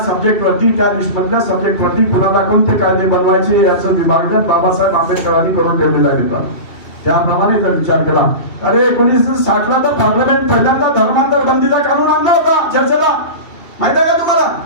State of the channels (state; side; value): late; right; 2.7 ms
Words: सब्जेक्टवरती, त्या लिस्टमधल्या सब्जेक्टवरती कुणाला कोणते कायदे बनवायचे याचं विभाजन बाबासाहेब आंबेडकरांनी करून ठेवलेलं आहे. त्याप्रमाणे जर विचार केला, अरे 1960 ला तर पार्लमेंट पहिल्यांदा धर्मांतर बंदीचा कानून आणला होता चर्चेला. माहिती आहे का तुम्हाला?